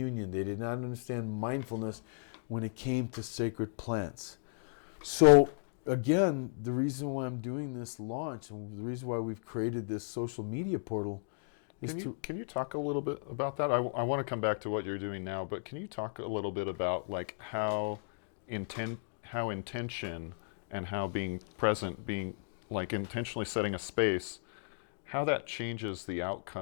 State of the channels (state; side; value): silent; right; digital silence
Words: They did not understand mindfulness when it came to sacred plants. So again, the reason why I'm doing this launch and the reason why we've created this social media portal is Can you talk a little bit about that? I want to come back to what you're doing now, but can you talk a little bit about like how intention and how being present, being like intentionally setting a space, how that changes the